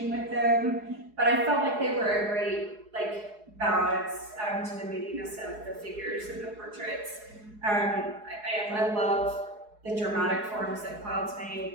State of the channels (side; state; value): left; late; 4.7 ms